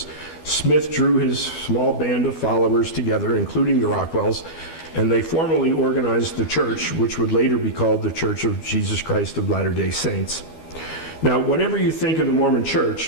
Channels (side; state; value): right; late; 12 ms